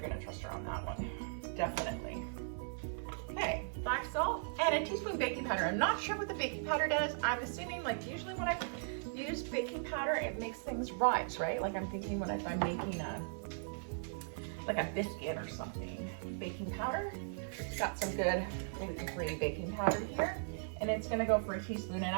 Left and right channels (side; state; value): left; silent; 52 dB below the other